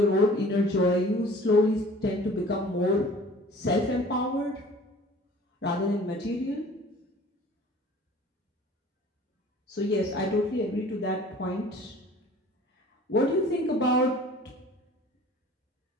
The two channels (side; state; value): both; normal; correlation 0.48